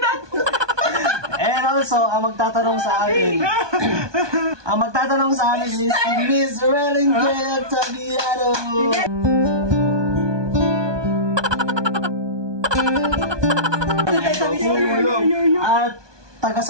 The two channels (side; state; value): left; late; 1.2 ms